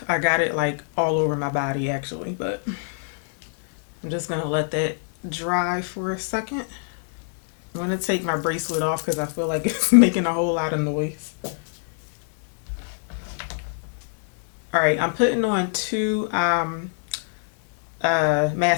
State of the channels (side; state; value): right; silent; digital silence